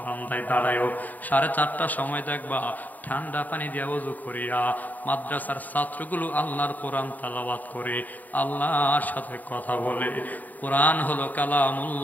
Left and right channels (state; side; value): late; right; 0.082 ms